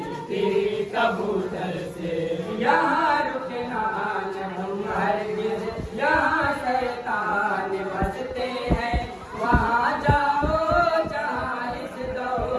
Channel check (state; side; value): identical; both; correlation 1.00